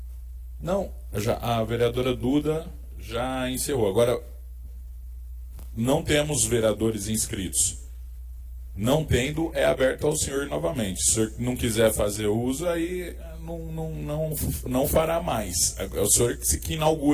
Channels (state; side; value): identical; both; correlation 1.00